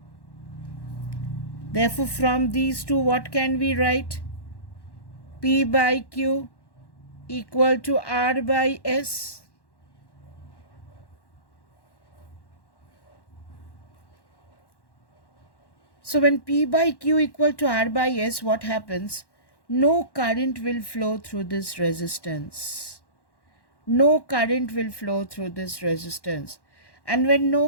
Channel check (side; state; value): right; late; 1.1 ms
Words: Therefore, from these two, what can we write? P by Q equal to R by S. So when P by Q equal to R by S, what happens? No current will flow through this resistance. No current will flow through this resistance. And when